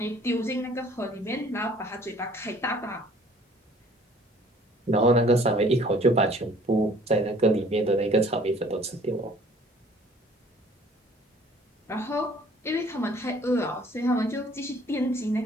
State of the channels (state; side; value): normal; both; correlation 0.55